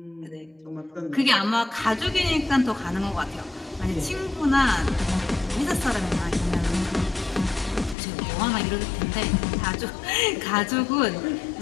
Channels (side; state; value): right; drops out; at 8.0 s